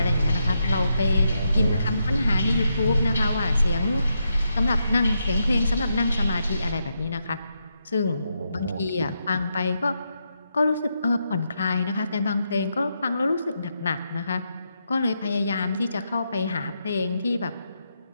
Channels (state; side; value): inverted; both; correlation -0.82